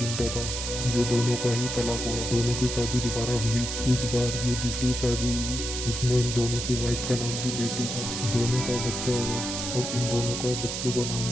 था, जो दोनों का ही तलाक हुआ। दोनों की शादी दोबारा हुई। इस बार जो दूसरी शादी हुई उसमें इन दोनों की वाइफ का नाम भी बेटी था। दोनों का बच्चा हुआ और उन दोनों का बच्चे का नाम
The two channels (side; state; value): right; noise; hiss, 4 dB below the sound